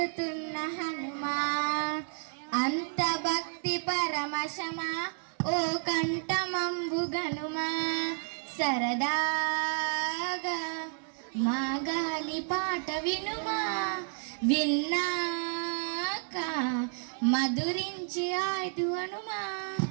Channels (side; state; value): left; silent; 57 dB below the other